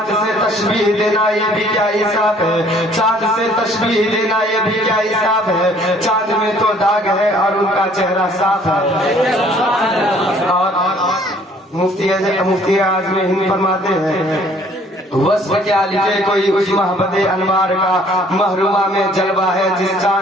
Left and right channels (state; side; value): normal; both; correlation 0.58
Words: سے تشبیہ دینا یہ بھی کیا انصاف ہے، چاند سے تشبیہ دینا یہ بھی کیا انصاف ہے، چاند میں تو داغ ہے اور ان کا چہرہ صاف ہے۔ اور مفتی اعظم ہند فرماتے ہیں وصف کیا لکھے کوئی اس محبت انوار کا، محرومہ میں جلوہ ہے جس